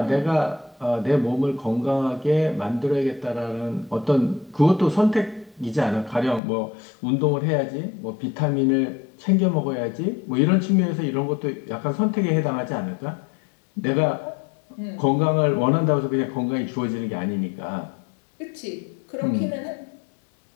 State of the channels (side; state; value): right; drops out; at 6.4 s